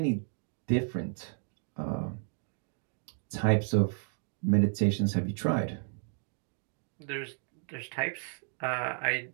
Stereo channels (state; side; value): silent; left; 56 dB below the other